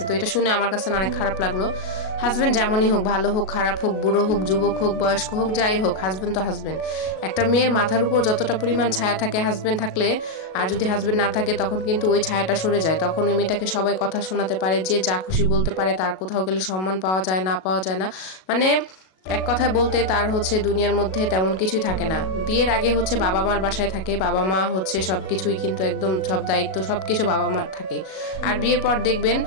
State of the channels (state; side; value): late; right; 37 ms